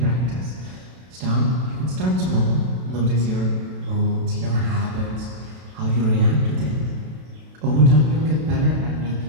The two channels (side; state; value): left; late; 32 ms